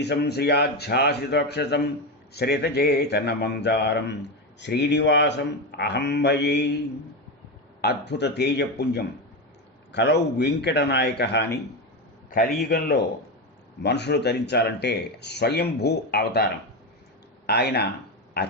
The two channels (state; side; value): normal; both; correlation 0.14